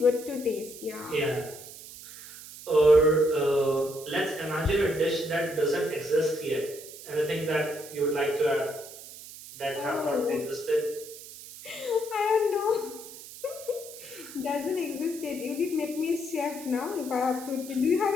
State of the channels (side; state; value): right; noise; hiss, 15 dB below the sound